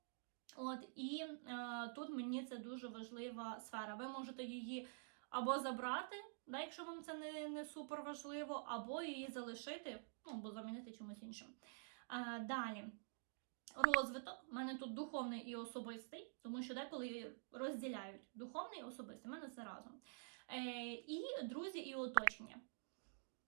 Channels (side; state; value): left; silent; digital silence